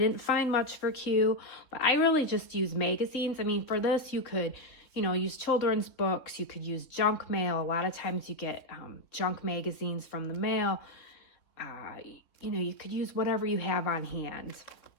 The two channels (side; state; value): right; late; 3.8 ms